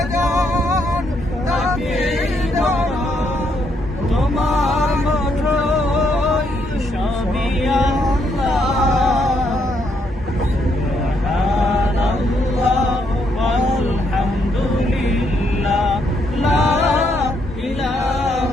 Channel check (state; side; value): normal; both; correlation 0.74